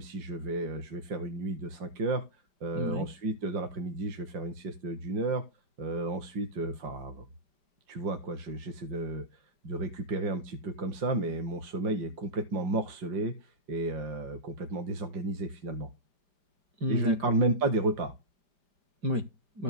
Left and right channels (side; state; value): left; late; 5.0 ms